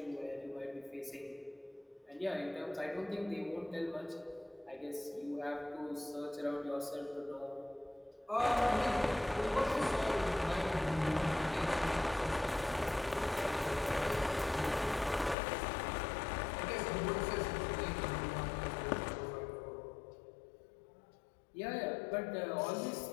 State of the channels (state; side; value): drops out; right; at 15.4 s